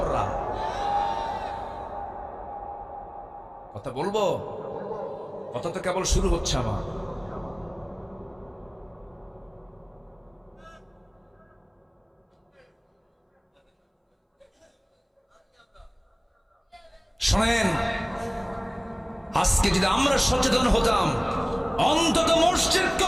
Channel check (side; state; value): both; identical; correlation 1.00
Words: কথা বলবো, কথা তো কেবল শুরু হচ্ছে আমার। শোনেন, আজকে যদি আমরা সচেতন হতাম, অন্তত মসজিদ